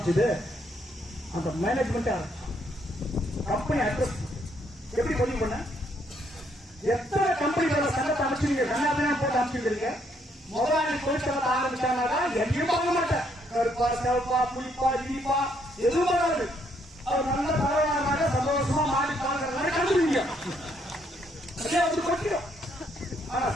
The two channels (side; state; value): both; normal; correlation 0.71